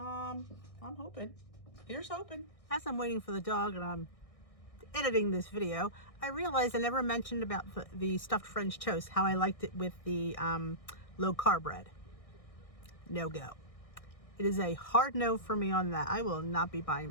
hoping. Here's hoping. As I'm waiting for the dog and I'm editing this video, I realized I never mentioned about the stuffed French toast, how I liked it with the low carb bread. No go. It is a hard no for me on that. I will not be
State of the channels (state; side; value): late; right; 1.6 ms